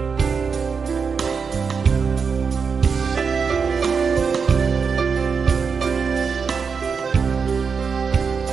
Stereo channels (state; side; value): quieter; left; 5.6 dB